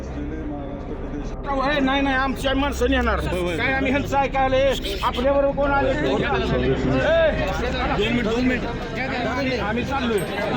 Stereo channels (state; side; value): identical; both; correlation 1.00